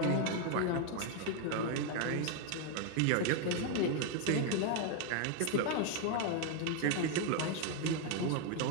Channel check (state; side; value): different; both; correlation 0.01